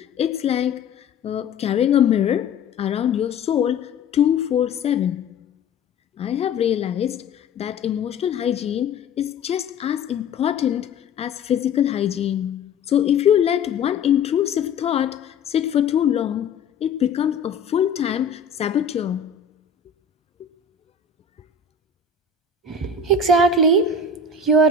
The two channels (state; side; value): quieter; right; 4.9 dB